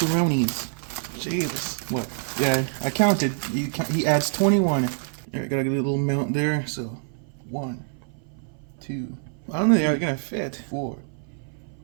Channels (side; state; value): left; silent; 57 dB below the other